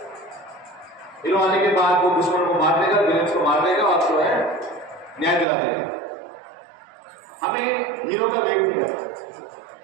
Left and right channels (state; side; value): drops out; left; at 5.5 s